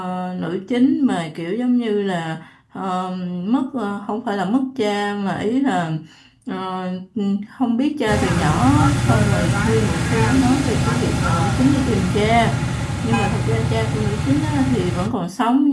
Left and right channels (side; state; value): both; identical; correlation 1.00